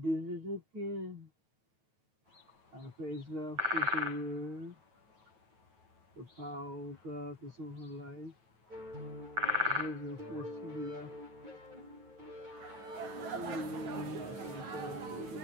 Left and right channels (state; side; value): late; left; 9.2 ms